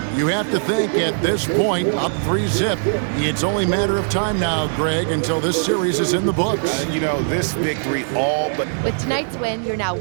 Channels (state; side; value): silent; left; digital silence